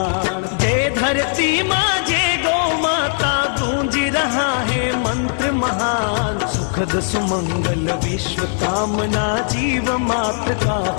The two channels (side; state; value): right; silent; digital silence